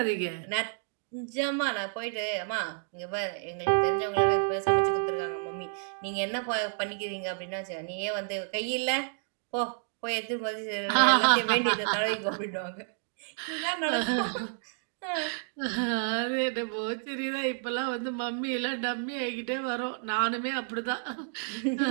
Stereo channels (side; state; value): left; silent; digital silence